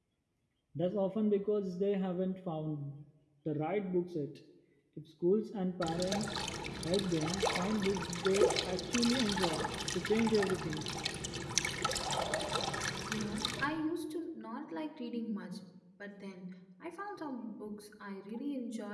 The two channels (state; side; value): identical; both; correlation 1.00